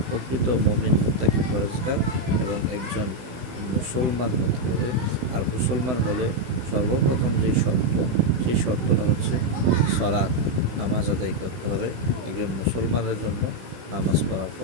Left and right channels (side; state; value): left; late; 16 ms